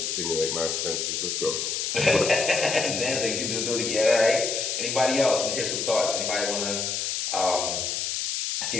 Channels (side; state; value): left; noise; hiss, 1 dB below the sound